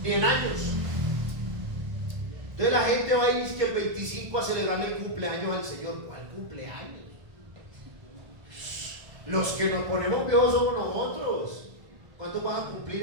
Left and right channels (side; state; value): left; late; 1.4 ms